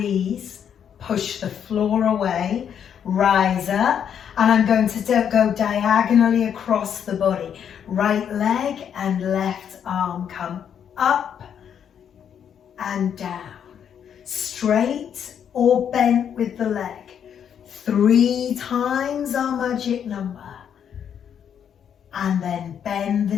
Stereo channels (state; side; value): quieter; right; 8.5 dB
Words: push the floor away, rise up, and I'm going to go diagonally across the body. Right leg and left arm come up and down. Straight or bent with the leg. 3 times our magic number. And then bend the